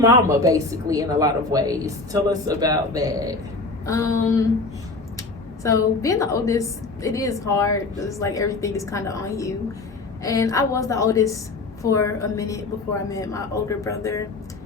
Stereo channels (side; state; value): right; quieter; 3.5 dB